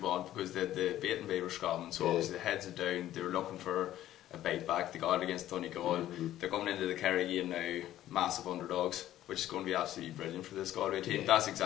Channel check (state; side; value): quieter; right; 13.2 dB